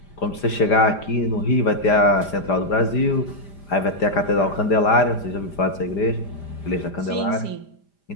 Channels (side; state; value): right; late; 5.0 ms